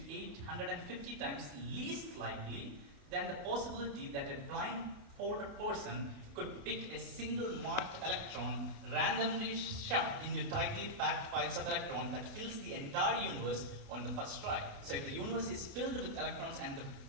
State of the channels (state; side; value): late; left; 29 ms